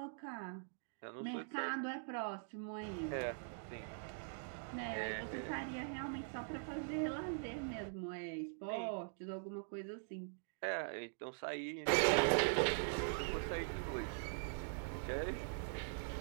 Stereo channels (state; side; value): silent; left; digital silence